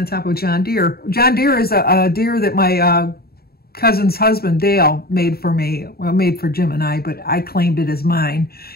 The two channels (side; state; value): right; late; 0.45 ms